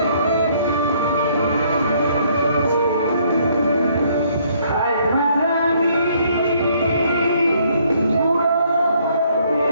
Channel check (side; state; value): both; inverted; correlation -0.66